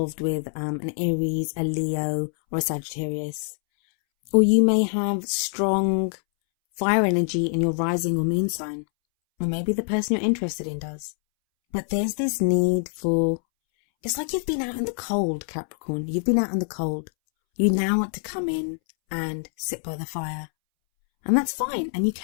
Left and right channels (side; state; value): right; silent; 62 dB below the other